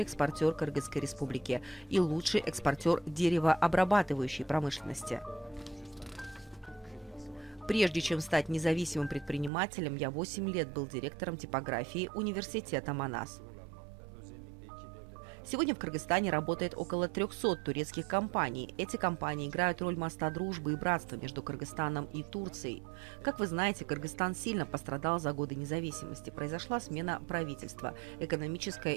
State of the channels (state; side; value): drops out; left; at 9.5 s